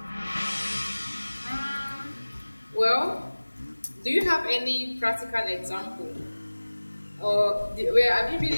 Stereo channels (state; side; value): inverted; both; correlation -1.00